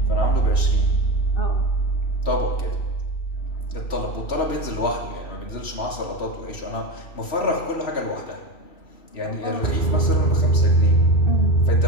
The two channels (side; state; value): right; late; 3.1 ms